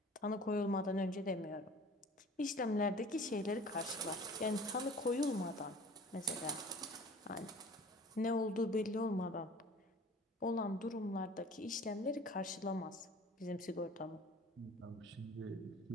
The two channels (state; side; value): normal; both; correlation 0.46